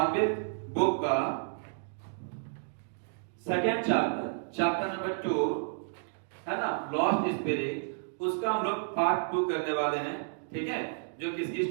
बुक का सेकंड चैप्टर नंबर 2 है ना, लॉस्ट स्पिरिट, उसका हम लोग पार्ट 2 करने वाले हैं। ठीक है, जो किसकी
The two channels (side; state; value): left; silent; digital silence